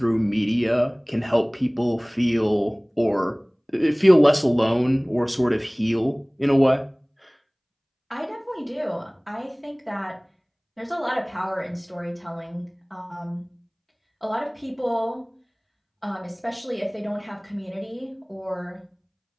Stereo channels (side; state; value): both; identical; correlation 1.00